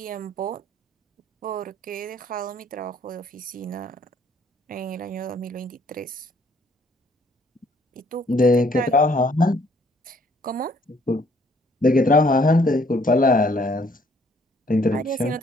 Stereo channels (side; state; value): both; normal; correlation 0.63